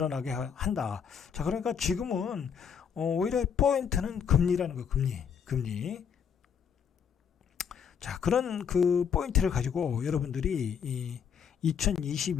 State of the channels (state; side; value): quieter; right; 7.3 dB